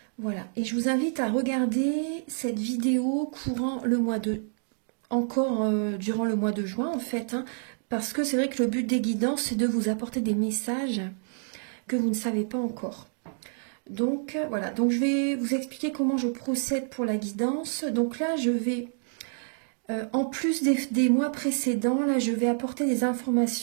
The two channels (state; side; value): silent; left; digital silence